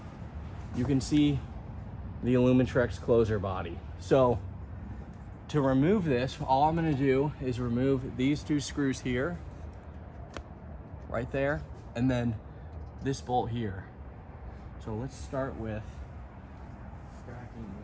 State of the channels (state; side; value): identical; both; correlation 1.00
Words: you can see the Alumitrex closer body. So to remove this, all I'm going to do is remove these two screws here, right there, and then this bolt here. So let's start with cracking